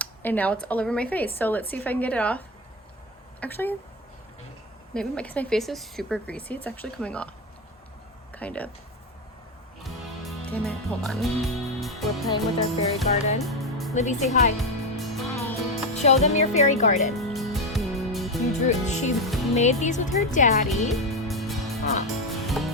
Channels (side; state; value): both; normal; correlation 0.14